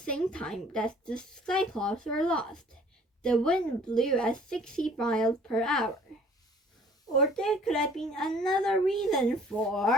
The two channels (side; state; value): both; normal; correlation 0.54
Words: time that the Cyclops were lost. The wind blew at 60 miles per hour. Or there could have been another reason